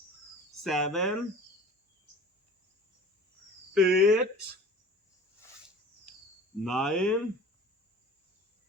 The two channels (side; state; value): both; normal; correlation 0.43